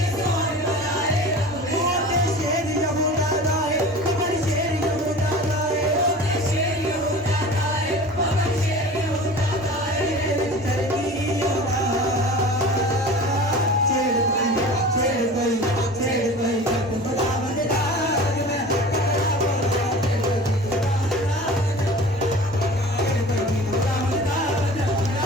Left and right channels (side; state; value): both; normal; correlation 0.39